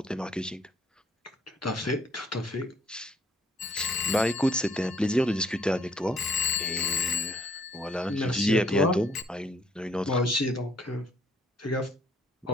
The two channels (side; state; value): both; normal; correlation 0.66